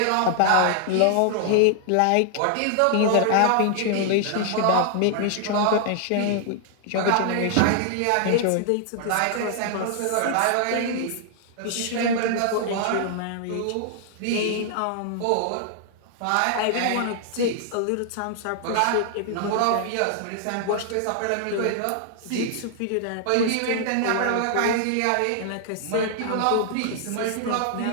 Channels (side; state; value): both; different; correlation 0.00